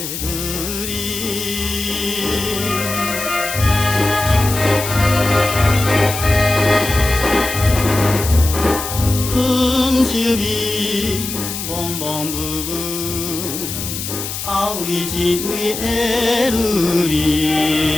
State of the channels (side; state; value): left; noise; hiss, 6 dB below the sound